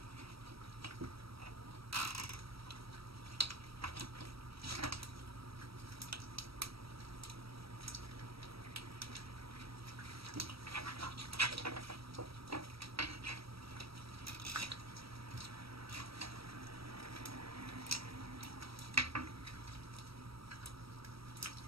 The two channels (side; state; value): left; late; 0.76 ms